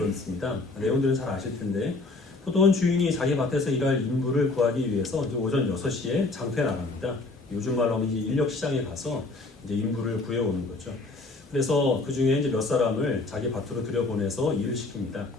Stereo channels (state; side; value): quieter; right; 3.3 dB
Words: 내용들은 잘 아실 텐데 포도원 주인이 자기 밭에서 일할 인부를 구하기 위해서 이제 오전 6시에 장터에 나갑니다. 요즘 말로 하면 이제 인력 시장에 가서 이제 인부를 구해오는 거죠. 그래서 그 중에 이제 몇 사람을 자기 밭으로 들여보내서 일을 시킵니다.